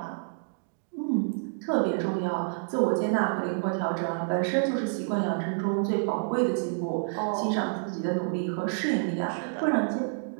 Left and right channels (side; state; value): left; silent; digital silence